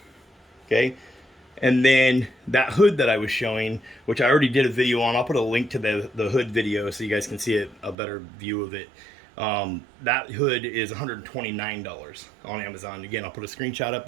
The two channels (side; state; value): left; drops out; at 8.0 s